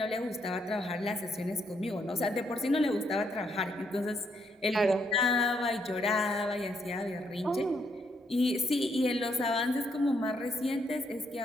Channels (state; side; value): normal; both; correlation 0.74